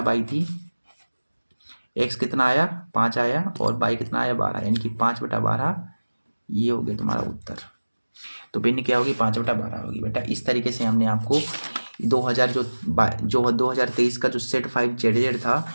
थी। x कितना आया 5 आया और y कितना आया 12, यानी कि 5/12 ये हो गया तुम्हारा उत्तर। तो भिन्न क्या होगी 5/12 होगी बेटा। इस तरीके से हमने आपको 2023 का जो सेट 5 जेड था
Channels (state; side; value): inverted; both; correlation -1.00